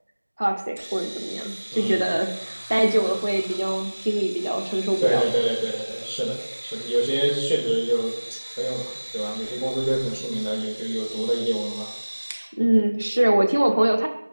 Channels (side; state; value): both; inverted; correlation -1.00